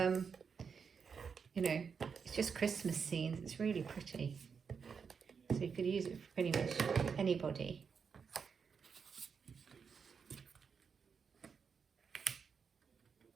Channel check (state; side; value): quieter; left; 6.1 dB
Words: know, it's just Christmas scenes. It's really pretty. So you could use it for pretty much anybody.